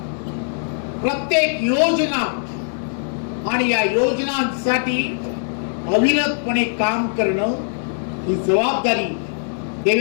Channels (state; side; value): silent; right; digital silence